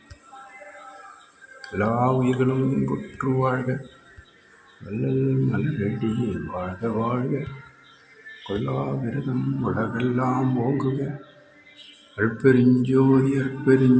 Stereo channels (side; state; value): both; identical; correlation 1.00